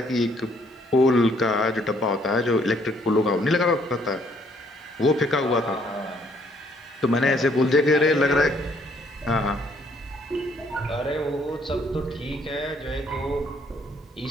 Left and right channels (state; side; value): normal; both; correlation 0.66